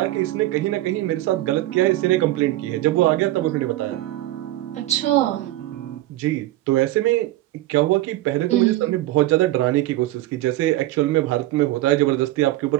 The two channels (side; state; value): left; quieter; 16.2 dB